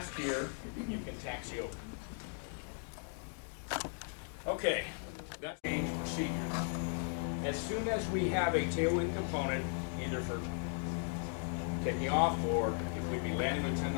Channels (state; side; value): silent; right; 53 dB below the other